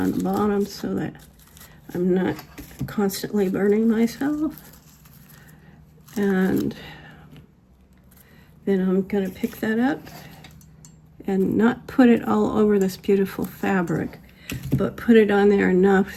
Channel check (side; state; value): both; identical; correlation 1.00